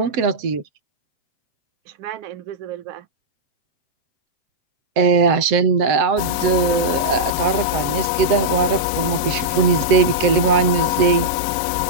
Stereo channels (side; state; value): left; late; 7.2 ms